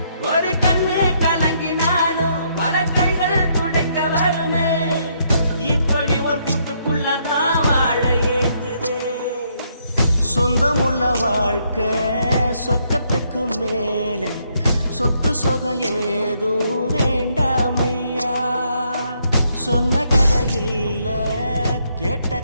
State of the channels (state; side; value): inverted; both; correlation -0.73